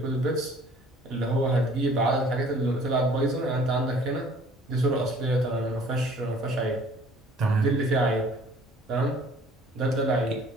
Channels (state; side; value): normal; both; correlation 0.54